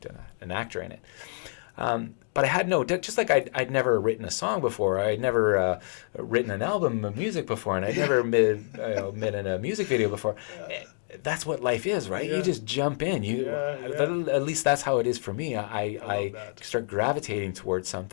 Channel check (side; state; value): right; silent; 60 dB below the other